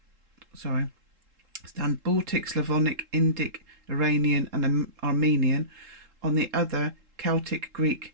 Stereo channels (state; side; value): late; left; 3.7 ms